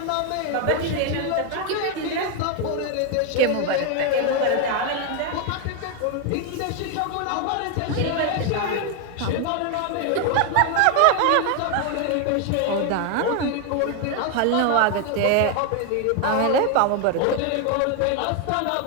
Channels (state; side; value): different; both; correlation 0.01